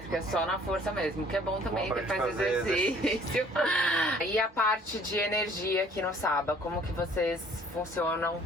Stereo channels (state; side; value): normal; both; correlation 0.56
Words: só na força mesmo, que é bom também, Bom que faz fazer exercício. E a parte de energia aqui no Saba, como que vocês funcionam?